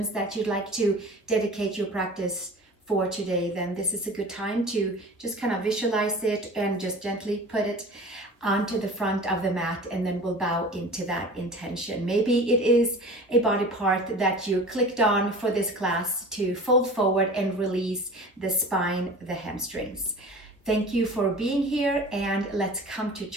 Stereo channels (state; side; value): normal; both; correlation 0.39